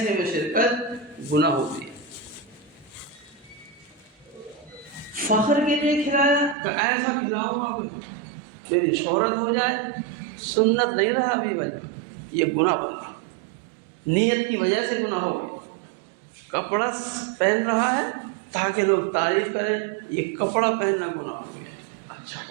میں شرکت گناہ ہوتی ہے. فخر کے لیے کھلایا کہ ایسا کھلاؤں گا کہ میری شہرت ہو جائے، سنت نہیں رہا ابھی بھائی. یہ گناہ ہو، نیت کی وجہ سے گناہ ہو گیا. کپڑا پہن رہا ہے تاکہ لوگ تعریف کریں، یہ کپڑا پہننا گناہ ہو گیا. اچھا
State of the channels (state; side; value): drops out; left; at 6.6 s